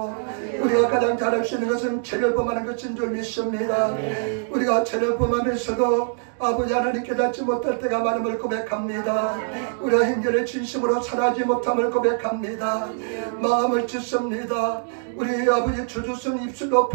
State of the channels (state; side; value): silent; left; digital silence